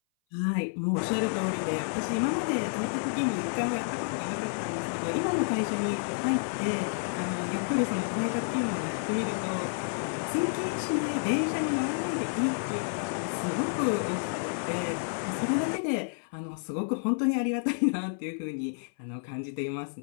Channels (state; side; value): silent; right; 58 dB below the other